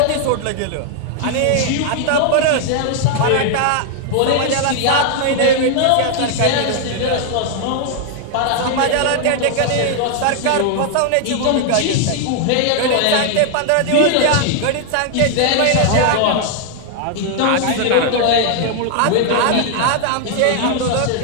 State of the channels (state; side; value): different; both; correlation 0.00